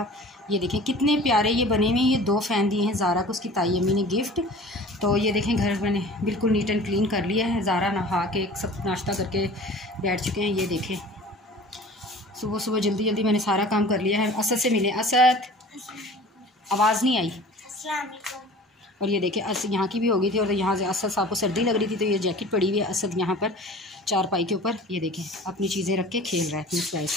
ये देखें कितने प्यारे ये बने हुए हैं। ये 2 फ़ैन दिए हैं ज़ारा को उसकी ताई अम्मी ने गिफ्ट। तो ये देखें घर मैंने बिल्कुल नीट एंड क्लीन कर लिया है। ज़ारा नहा के सब नाश्ता करके बैठ चुके हैं। ये देखें सुबह सुबह जल्दी जल्दी मैंने सारा काम कर लिया है। असद से मिले। असद, आवाज़ नहीं आई। और ये देखें असद यहाँ की भी हो गई थी और यहाँ से असद साहब को सर्दी लग रही थी तो ये जैकेट पड़ी हुई है। असद यहाँ पर चारपाई के ऊपर ये देखें अपनी चीज़ें रख के खेल रहा है अपनी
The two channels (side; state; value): both; normal; correlation 0.43